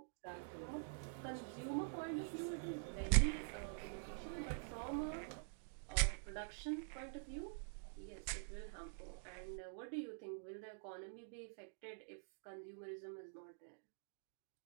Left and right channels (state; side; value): silent; left; digital silence